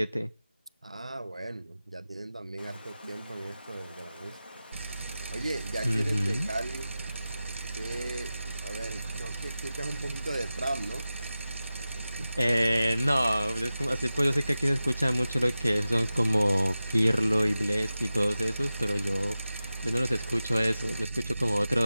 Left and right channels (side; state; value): both; inverted; correlation -0.94